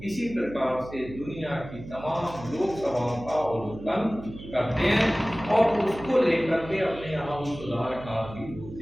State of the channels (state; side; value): noise; right; hum, 14 dB below the sound